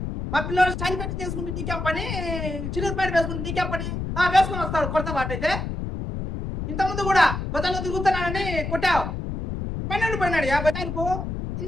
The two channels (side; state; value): left; noise; rumble, 4 dB below the sound